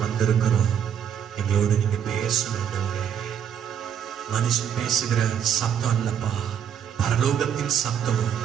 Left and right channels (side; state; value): left; quieter; 8.7 dB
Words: வந்திருக்கிறோம். எங்களோடு நீங்க பேசணும் ஆண்டவரே. மனுஷன் பேசுகிற சத்தம் அல்லப்பா, பரலோகத்தின் சத்தம்